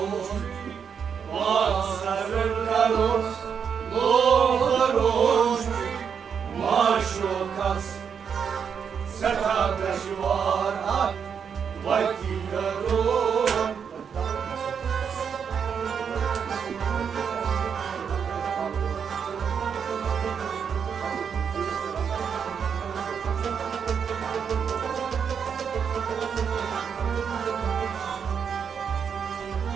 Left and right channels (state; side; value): quieter; left; 7.0 dB